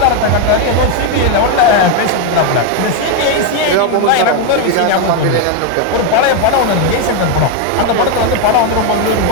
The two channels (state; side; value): different; both; correlation 0.01